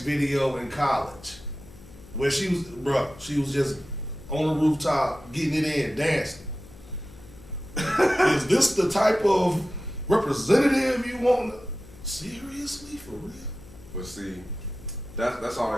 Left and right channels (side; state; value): left; noise; hum, 20 dB below the sound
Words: in college where she was just on the rooftop getting it in, dancing. Is this the type of representative you want? Seriously, for real? But see, that's all